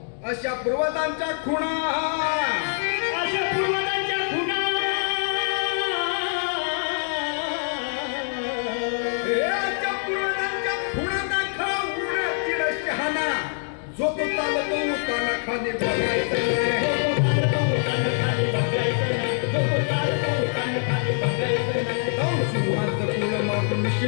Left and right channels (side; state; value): right; silent; digital silence